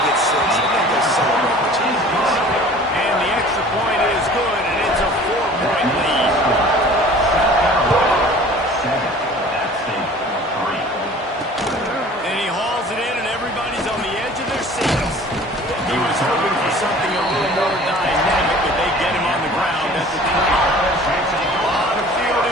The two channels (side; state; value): both; normal; correlation 0.46